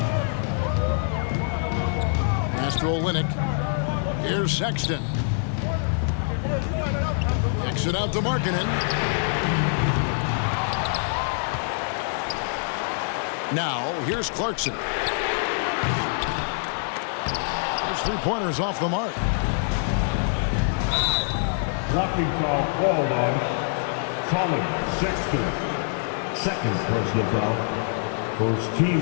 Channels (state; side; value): silent; right; digital silence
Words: Olynyk. Here's Sexton. Kicks it out to Markkanen. Now, here's Clarkson. His 3-pointers off the mark. Blocking foul called on Colin Sexton. Second personal foul. First team